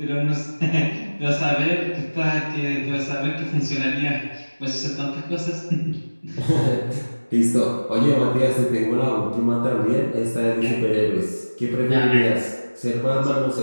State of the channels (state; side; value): inverted; both; correlation -1.00